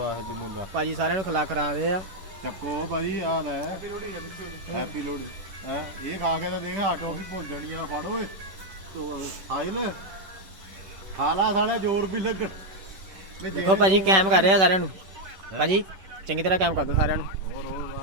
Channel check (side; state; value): left; late; 10 ms